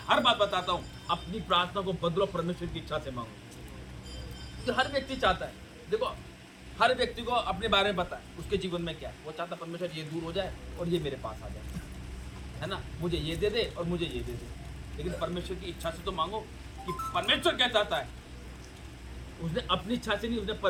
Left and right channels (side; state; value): both; identical; correlation 1.00